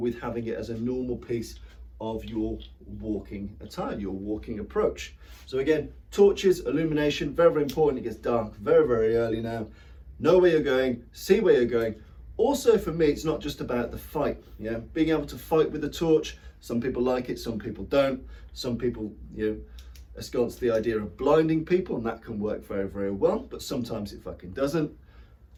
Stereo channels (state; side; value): identical; both; correlation 1.00